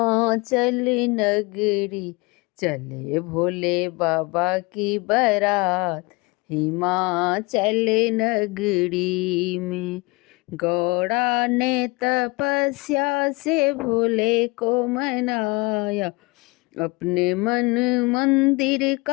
नगरी, चले भोले बाबा की बारात हिमाचल नगरी में। गौड़ा ने तपस्या से भोले को मनाया, अपने मन मंदिर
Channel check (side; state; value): right; quieter; 25.7 dB